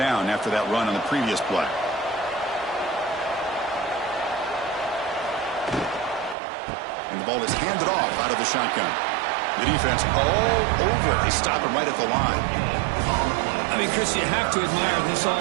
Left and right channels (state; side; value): drops out; left; at 6.4 s